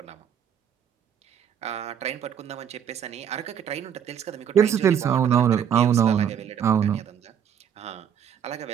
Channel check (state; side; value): quieter; left; 8.6 dB